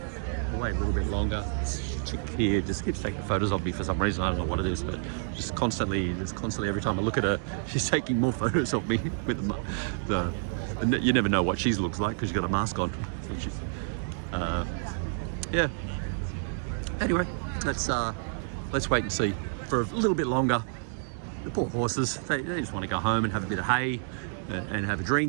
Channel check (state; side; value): silent; left; digital silence